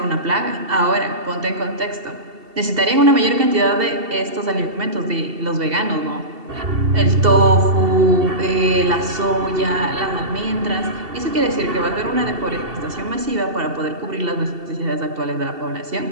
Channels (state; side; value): late; left; 2.7 ms